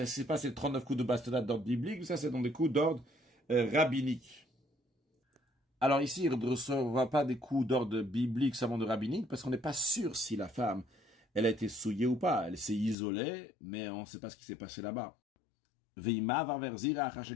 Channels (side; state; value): right; drops out; at 13.0 s